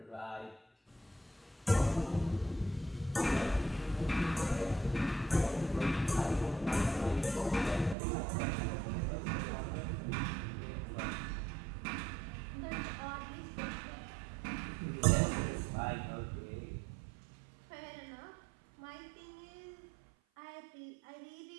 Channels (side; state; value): left; drops out; at 8.0 s